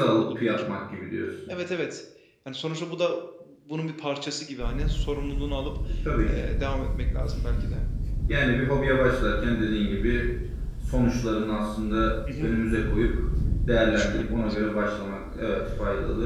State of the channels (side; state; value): both; identical; correlation 1.00